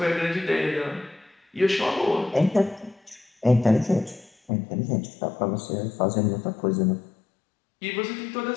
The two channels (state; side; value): drops out; right; at 4.5 s